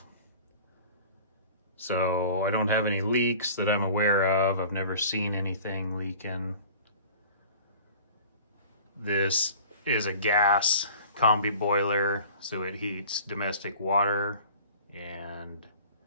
So I don't have any leaks that I'm aware of. I've never seen anything leaking. This is a gas combi boiler, so it heats domestic water, and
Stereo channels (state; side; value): inverted; both; correlation -0.44